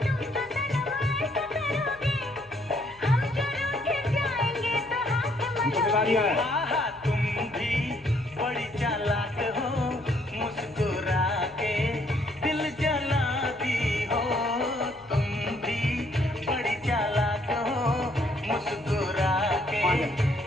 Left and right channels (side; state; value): left; noise; hum, 26 dB below the sound